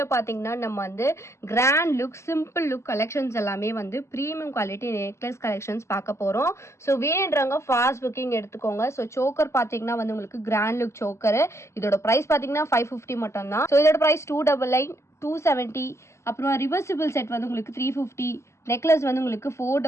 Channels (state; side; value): late; right; 0.13 ms